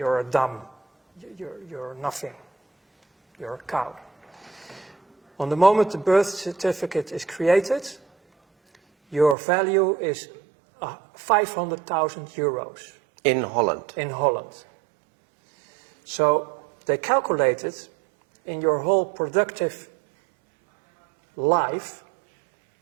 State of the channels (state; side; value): drops out; left; at 9.3 s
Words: a dumb, you're nothing, you're a cow. On the moment the birth certificate is created, your value is 500,000 euros. In Holland? In Holland. So they calculated in your whole productive life,